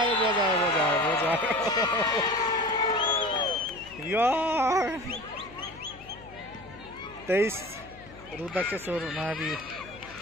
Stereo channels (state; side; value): noise; left; hum, 20 dB below the sound